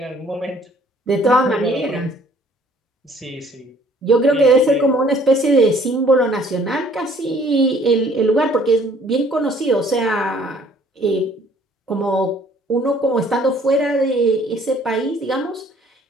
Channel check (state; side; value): normal; both; correlation 0.58